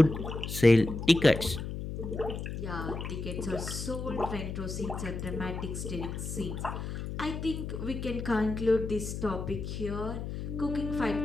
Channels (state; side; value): noise; left; hum, 6 dB below the sound